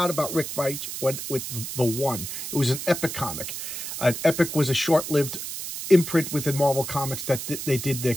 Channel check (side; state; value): right; noise; hiss, 7 dB below the sound